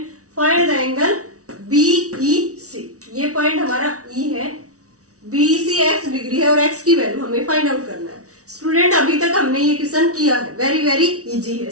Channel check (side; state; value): left; late; 0.66 ms